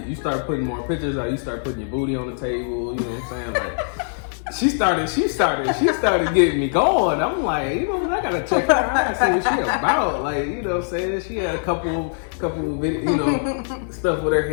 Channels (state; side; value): silent; right; digital silence